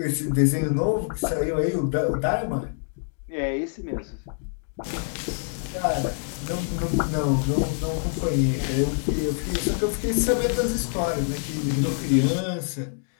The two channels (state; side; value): silent; right; digital silence